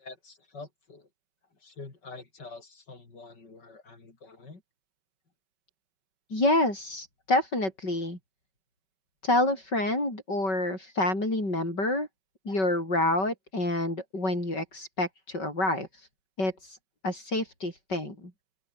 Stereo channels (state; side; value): late; right; 5.3 ms